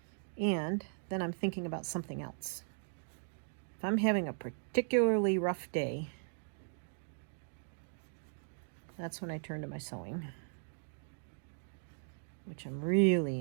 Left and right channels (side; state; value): left; silent; digital silence